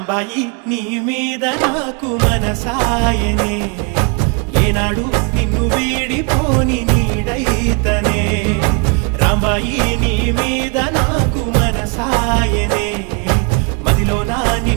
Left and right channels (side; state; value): left; quieter; 33.4 dB